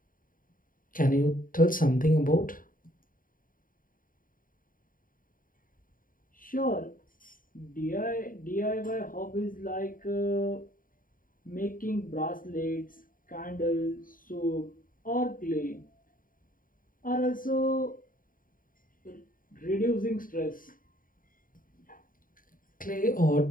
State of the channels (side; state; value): right; late; 0.40 ms